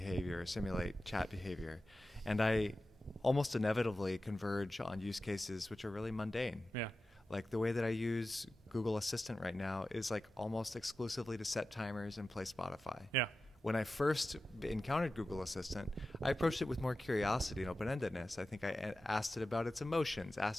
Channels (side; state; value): both; normal; correlation 0.93